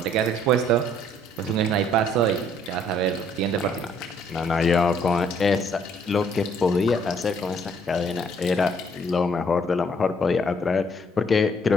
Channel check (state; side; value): normal; both; correlation 0.64